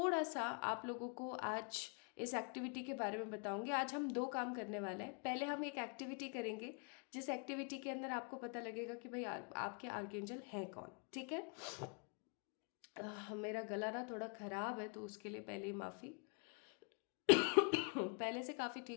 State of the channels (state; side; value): quieter; right; 38.1 dB